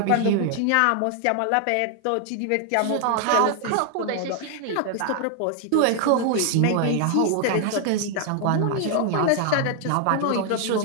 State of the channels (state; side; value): different; both; correlation 0.00